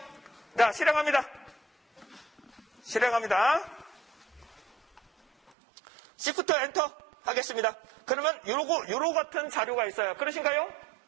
자, 실행합니다. Shift 엔터 하겠습니다. 그러면 요로 같은 자료가 있어요. 그러신가요?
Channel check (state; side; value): drops out; left; at 5.5 s